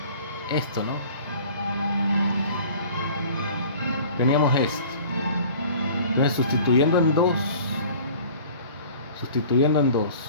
esto, ¿no? Teníamos esto. Entonces sustituyendo en 2,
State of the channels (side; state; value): both; inverted; correlation -0.46